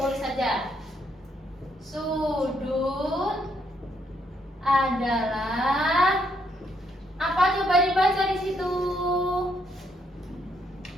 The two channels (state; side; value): normal; both; correlation 0.74